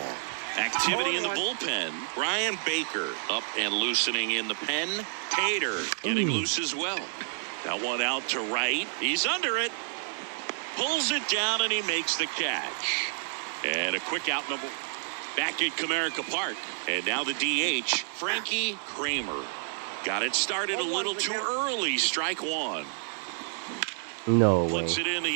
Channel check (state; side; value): silent; left; digital silence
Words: Activity in the bullpen. Brian Baker up and loosening in the pen. Tater getting loose as well. That one out to right. He's under it. Pulls it down and he makes the catch. And a quick out number back at Comerica Park. And now the DH, Frankie Kramer. Got it started a little too early. Strike 1. No way. Flips it in